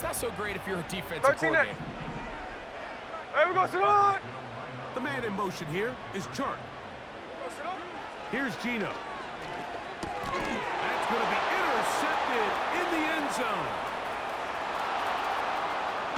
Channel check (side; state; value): both; identical; correlation 1.00